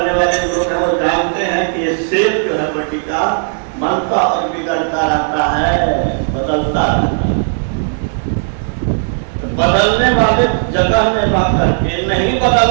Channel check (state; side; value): silent; left; 70 dB below the other